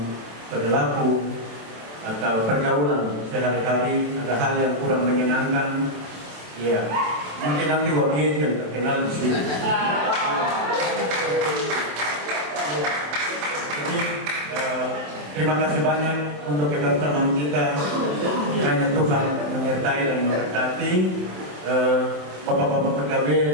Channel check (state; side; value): late; left; 27 ms